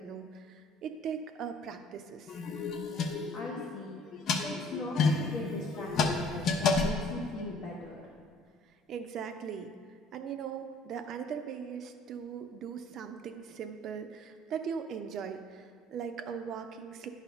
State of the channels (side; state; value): both; normal; correlation 0.54